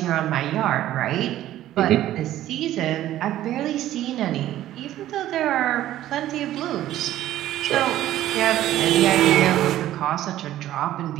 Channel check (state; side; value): quieter; left; 13.5 dB